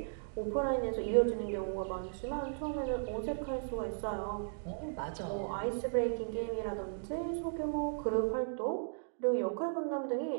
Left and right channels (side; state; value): left; silent; digital silence